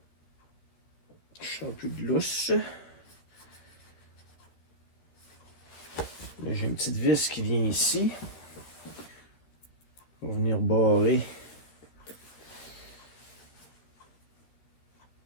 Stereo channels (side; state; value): right; late; 13 ms